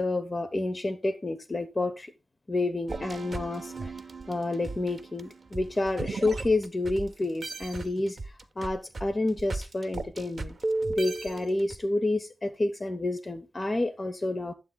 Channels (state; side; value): normal; both; correlation 0.94